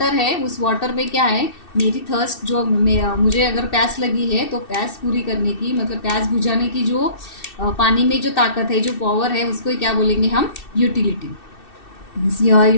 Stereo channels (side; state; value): right; late; 2.6 ms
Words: है उस वाटर में क्या है, मेरी थर्स्ट जो मुझे अगर प्यास लगी है तो प्यास पूरी करने की, मतलब प्यास बुझाने की जो पानी में जो ताकत है, जो पावर है, उसको क्या बोलेंगे हम, utility.